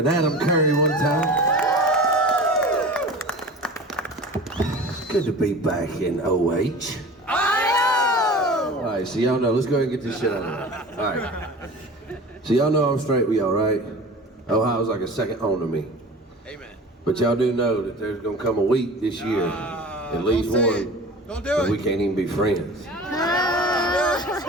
Adam Curry one time. It's good to be back in OH. All right, so y'all know, let's go ahead and get this shit out of the way. All right. So y'all know I'm straight with y'all, right? Ohio's like a second home to me. Amen. But y'all do know that there's gonna come a week this year, at least one, don't do that it. we can't even be friends.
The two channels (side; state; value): both; normal; correlation 0.38